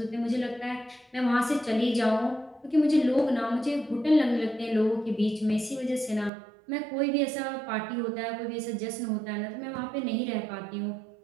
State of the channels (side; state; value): left; drops out; at 6.3 s